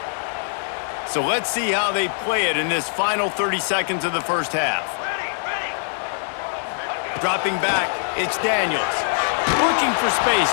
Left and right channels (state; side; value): silent; right; digital silence